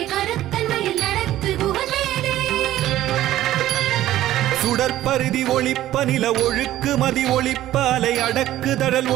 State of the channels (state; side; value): quieter; left; 13.9 dB